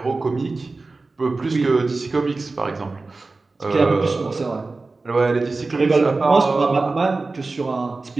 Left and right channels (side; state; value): left; quieter; 3.6 dB